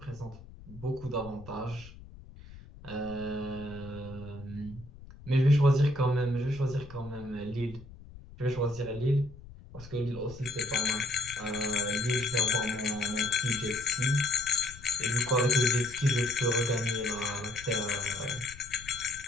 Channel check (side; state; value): left; noise; rumble, 18 dB below the sound